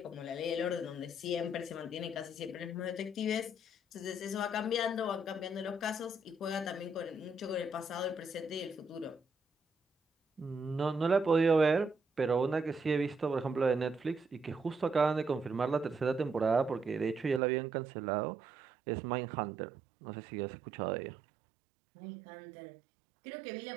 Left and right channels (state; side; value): drops out; left; at 17.4 s